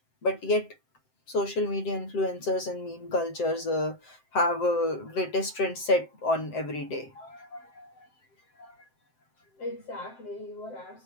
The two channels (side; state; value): right; late; 7.7 ms